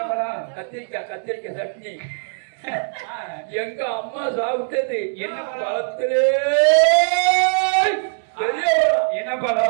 பழம் கத்திரிக்காய் சட்னி எங்க அம்மா சாப்பிட்டது என்ன பழத்திலே பெரிய பழம் என்ன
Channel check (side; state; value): left; silent; digital silence